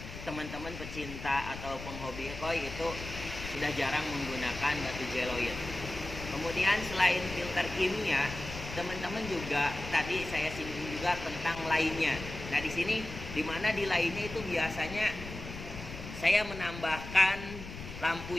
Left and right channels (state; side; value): noise; left; rumble, 10 dB below the sound